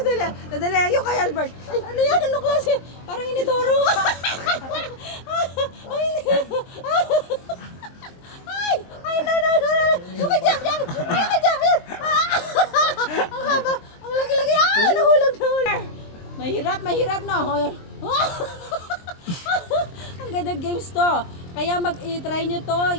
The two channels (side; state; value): right; late; 23 ms